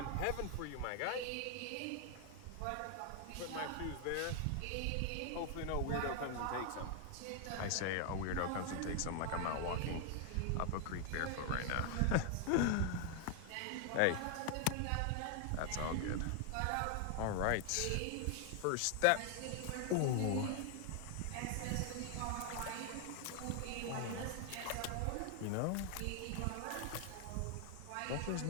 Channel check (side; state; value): both; different; correlation 0.00